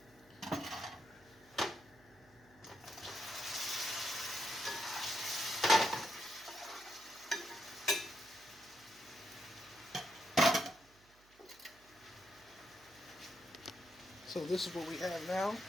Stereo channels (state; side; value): noise; right; hum, 28 dB below the sound